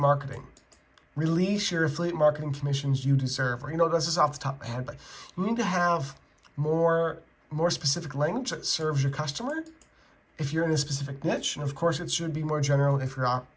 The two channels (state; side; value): identical; both; correlation 1.00